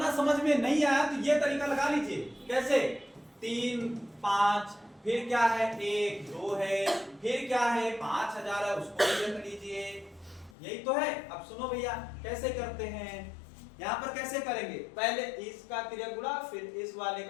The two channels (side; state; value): right; drops out; at 10.6 s